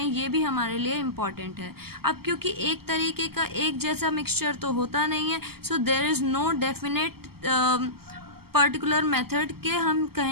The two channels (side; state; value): left; late; 0.95 ms